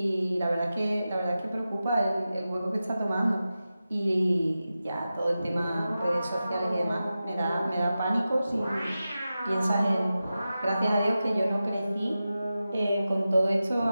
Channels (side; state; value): both; inverted; correlation -0.93